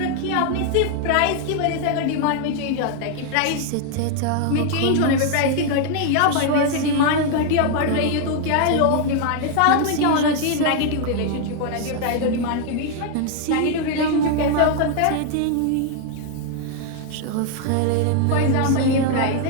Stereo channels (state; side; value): different; both; correlation 0.00